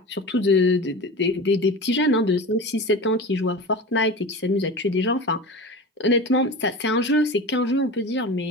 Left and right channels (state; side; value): normal; both; correlation 0.31